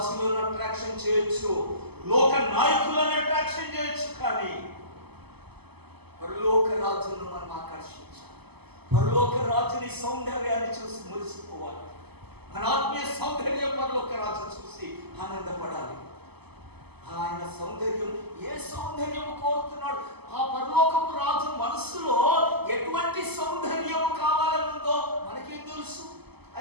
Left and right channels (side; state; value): left; late; 0.98 ms